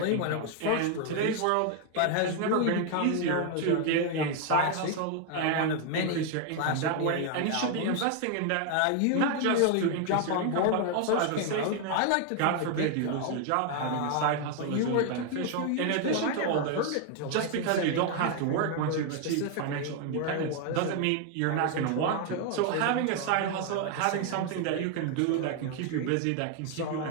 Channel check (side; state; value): both; different; correlation 0.00